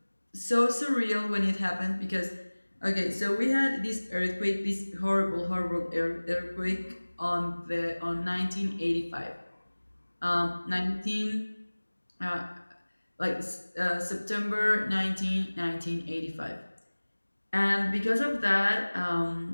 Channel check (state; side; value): inverted; both; correlation -1.00